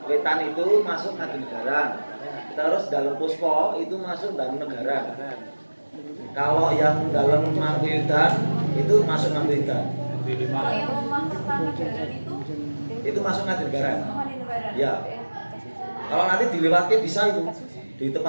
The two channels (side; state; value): both; inverted; correlation -1.00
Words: Wetan itu masuk Ngadingaran. Terus dalam Puspo itu masuk dalam negara. Kalau yang dalam Mangkuyudan itu masuk Mangkuyudan. Kalau yang Omah Kertanegara Itu masuk Ngadingaran. Padinegara. Ya. Kalau nanti dilewati bisa itu. Di